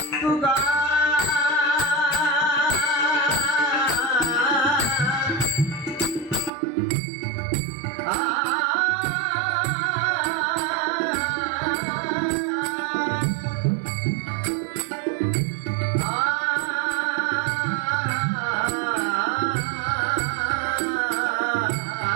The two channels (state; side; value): drops out; left; at 6.5 s